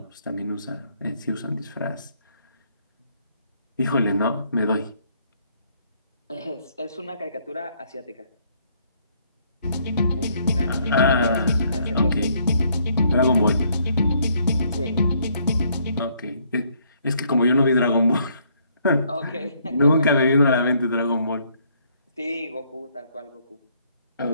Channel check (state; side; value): inverted; both; correlation -0.68